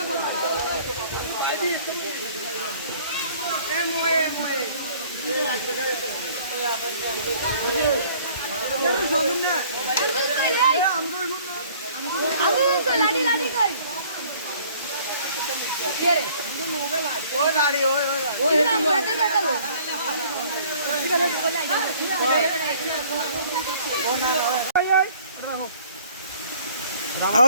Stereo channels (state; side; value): inverted; both; correlation -0.55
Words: लाडी लाडी कर ओ लाडी ओ नाम कहते कहते वो